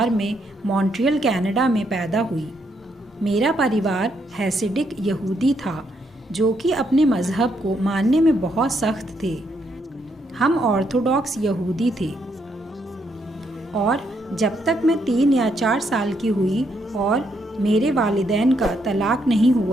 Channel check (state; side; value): normal; both; correlation 0.76